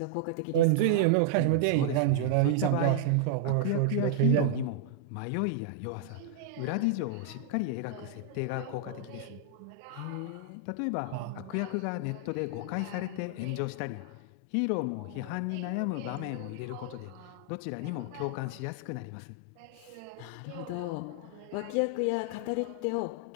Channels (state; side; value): different; both; correlation -0.01